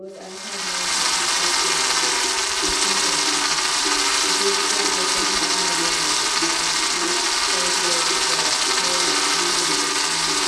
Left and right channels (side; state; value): both; identical; correlation 1.00